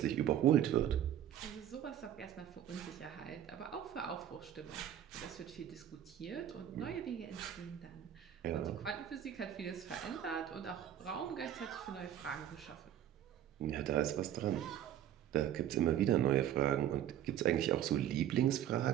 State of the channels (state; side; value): quieter; left; 10.7 dB